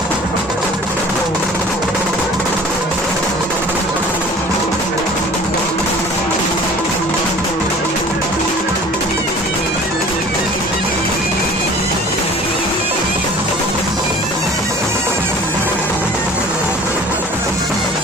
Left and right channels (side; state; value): both; normal; correlation 0.46